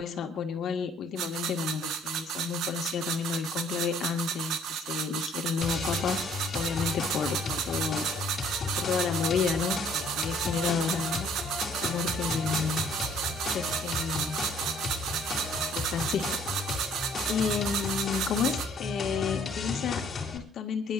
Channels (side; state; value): both; normal; correlation 0.60